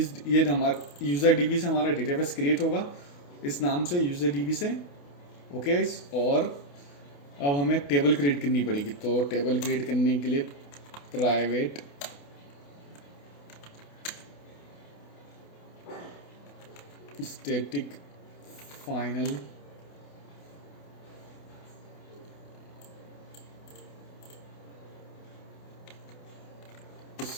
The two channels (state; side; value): late; right; 28 ms